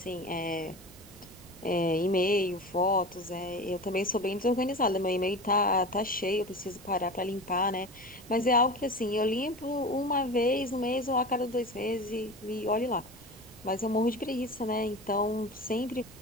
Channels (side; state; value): left; noise; rumble, 26 dB below the sound